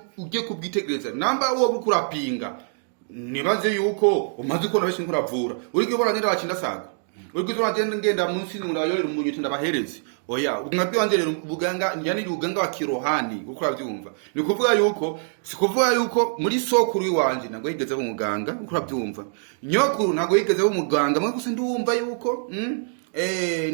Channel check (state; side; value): silent; left; digital silence